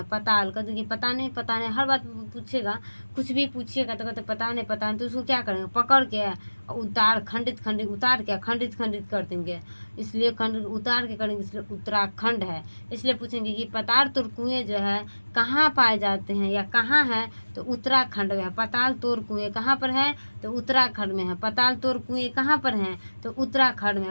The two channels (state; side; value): inverted; both; correlation -1.00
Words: पताल का देखिए पता नहीं हर बात पूछेगा, कुछ भी पूछिएगा तो कहते पता नहीं, तो उसको क्या करेंगे, पकड़ के उतार खंडित उतार के खंडित कर देंगे, इसलिए खंडित उतार के करेंगे, इसलिए उत्तराखंड है। इसलिए पूछेंगे कि पताल तोड़ कुएं जो है कहाँ पाए जाते हैं या कहाँ है, तो उत्तराखंड में है। पताल तोड़ कुएं कहाँ पर है, तो उत्तराखंड में है। पताल तोड़ कुएं कहाँ पर हैं, तो उत्तराखंड में